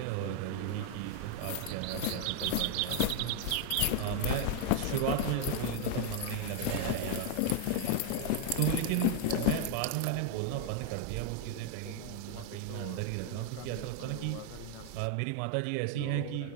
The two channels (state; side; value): different; both; correlation 0.00